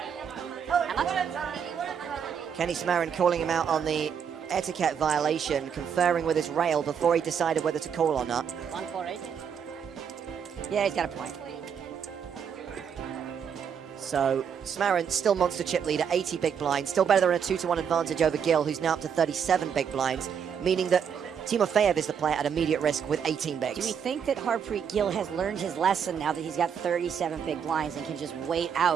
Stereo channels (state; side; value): quieter; left; 7.5 dB